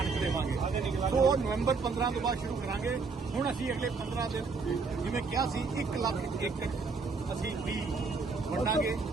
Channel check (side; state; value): left; quieter; 4.5 dB